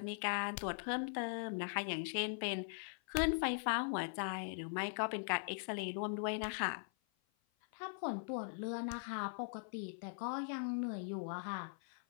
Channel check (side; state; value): right; silent; 50 dB below the other